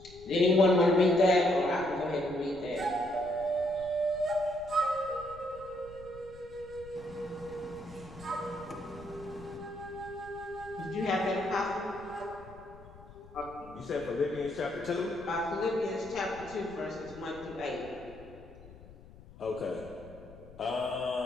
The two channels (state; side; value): noise; left; rumble, 19 dB below the sound